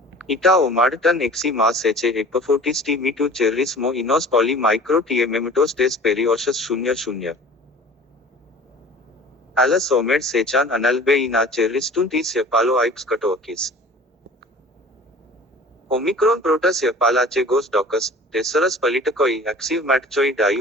इटा ओमाडटन एक्सी मास एचे एपफोटिस टी मी टू चेरिस मो इनोस पॉली माइक्रो टीएमेमेटोस टेस पेरियोशस 00 एलस ओमेड सेचान अनल्बे इना चेरिस्टुन टीस यपालो आइप्स कटोकिस ओमिक्रॉन प्रोटस यपालाचे गोस डॉकस टेसरस पलिटकोई एक्सिव मैटचोई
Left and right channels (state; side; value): normal; both; correlation 0.44